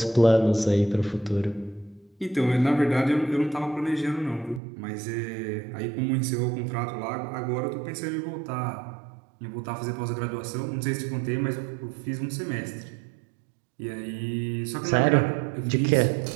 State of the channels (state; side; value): drops out; left; at 4.6 s